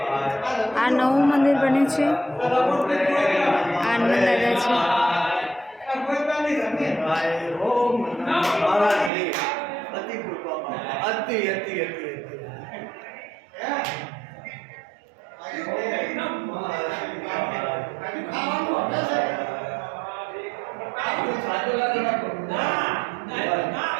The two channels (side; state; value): left; drops out; at 9.1 s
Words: આ નવું મંદિર બને છે। આનંદ દાદા છે।